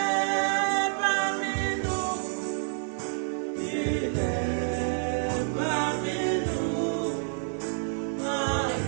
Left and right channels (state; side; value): silent; left; digital silence